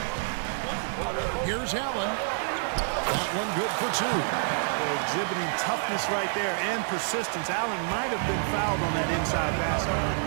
Here's Allen. That one good for two. They're exhibiting toughness right there and persistence. Allen might have been fouled on that inside basket.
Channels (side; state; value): left; silent; 59 dB below the other